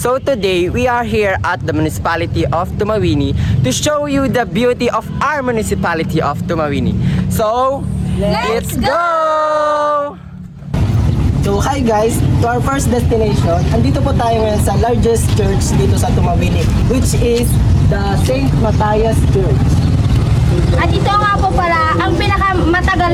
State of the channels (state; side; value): identical; both; correlation 1.00